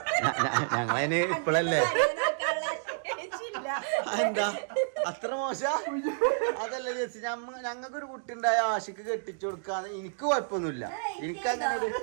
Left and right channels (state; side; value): silent; left; digital silence